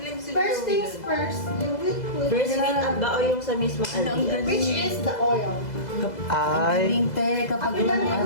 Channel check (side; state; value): right; late; 2.0 ms